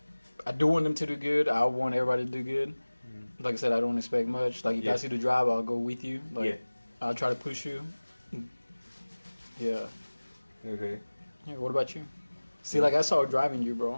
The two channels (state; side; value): inverted; both; correlation -1.00